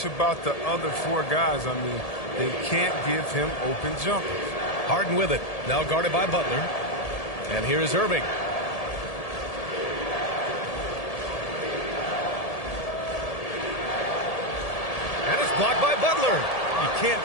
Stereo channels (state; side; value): late; right; 1.7 ms